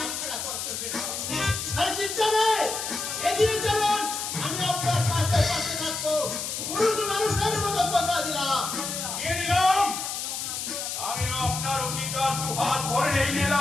ছাড়া করতে পেরেছেন। আরে চিন্তা নেই, এগিয়ে চলুন, আমি আপনার পাশে পাশে থাকবো। পুরুষ মানুষের মতো কথা দিলাম। নিয়ে নিলাম, আমি আপনার অঙ্গীকার দু হাত ভরে নিয়ে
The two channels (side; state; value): left; noise; hiss, 4 dB below the sound